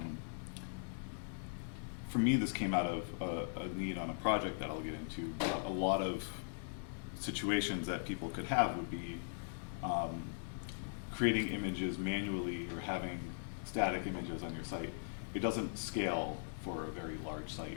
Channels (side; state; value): right; silent; digital silence